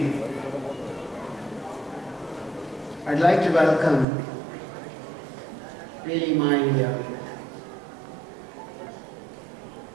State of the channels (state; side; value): drops out; left; at 4.0 s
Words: I'd like to welcome really my